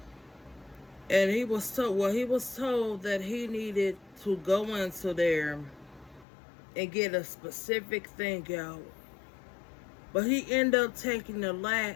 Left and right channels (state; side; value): drops out; right; at 6.2 s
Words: And he was told that he needed to go into there and get a specific thing out. But he ended up taking the